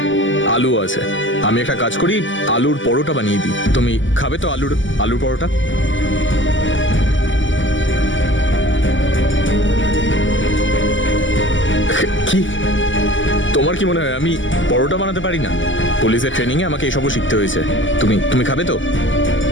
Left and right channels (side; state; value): right; late; 0.55 ms